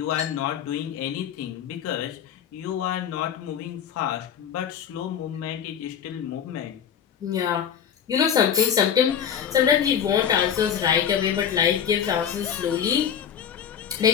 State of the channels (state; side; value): quieter; right; 8.5 dB